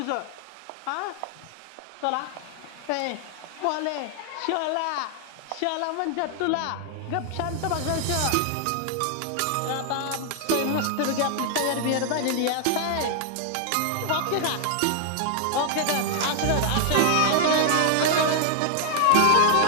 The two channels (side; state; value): both; different; correlation 0.00